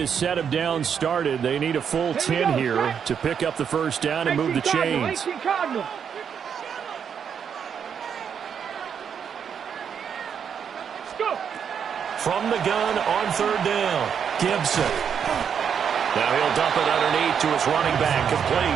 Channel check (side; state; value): left; quieter; 7.5 dB